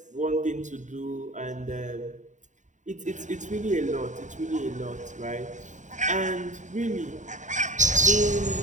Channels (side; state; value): left; late; 0.36 ms